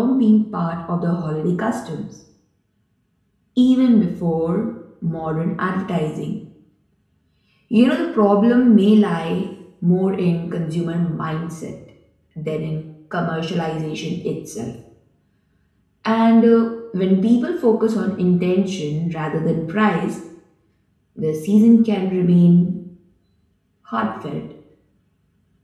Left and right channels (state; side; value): identical; both; correlation 1.00